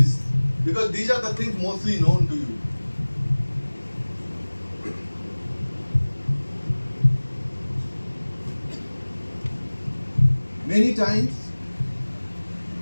because these are the things mostly known to you. Many times,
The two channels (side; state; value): both; inverted; correlation -1.00